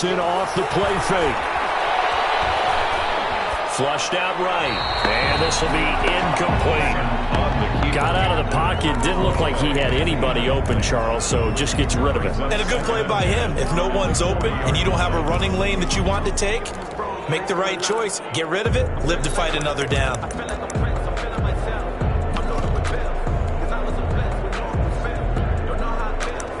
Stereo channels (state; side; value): identical; both; correlation 1.00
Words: off the play fake. Flushed out right. And this will be incomplete. Got out of the pocket. Didn't look like he had anybody open, Charles, so just gets rid of it. And a good play by him. If no one's open and you don't have a running lane that you want to take, make the right choice. Get rid of it. Live to fight another down.